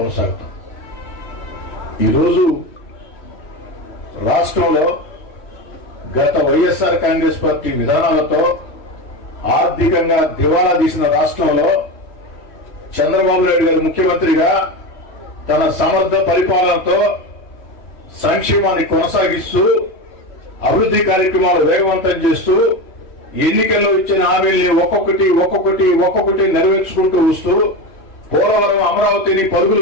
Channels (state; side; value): late; right; 3.1 ms